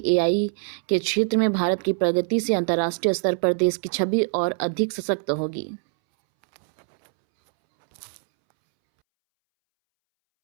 AI के क्षेत्र में भारत की प्रगति से अंतर्राष्ट्रीय स्तर पर देश की छवि और अधिक सशक्त होगी।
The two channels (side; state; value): left; silent; 63 dB below the other